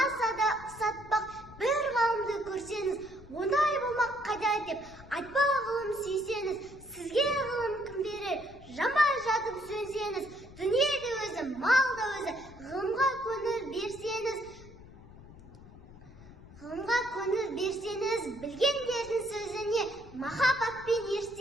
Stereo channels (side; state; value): left; noise; rumble, 19 dB below the sound